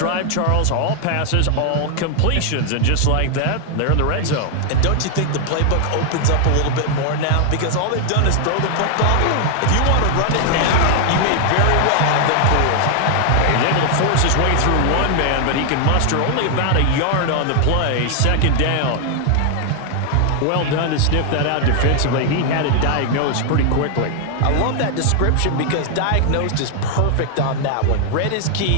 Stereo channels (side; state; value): both; different; correlation 0.00